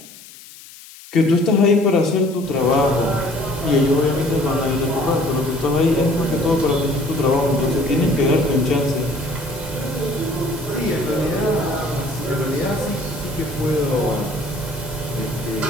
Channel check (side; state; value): left; noise; hiss, 19 dB below the sound